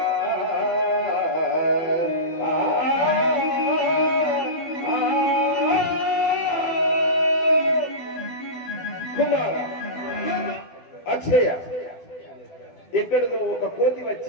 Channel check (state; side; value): late; right; 12 ms